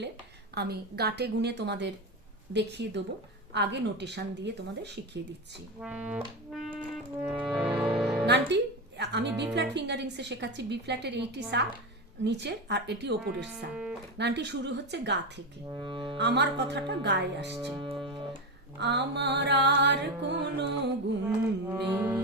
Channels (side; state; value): both; normal; correlation 0.16